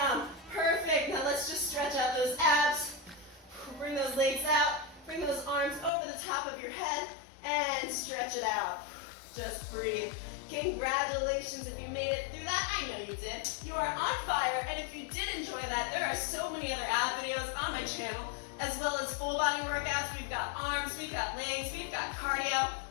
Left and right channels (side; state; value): right; drops out; at 5.9 s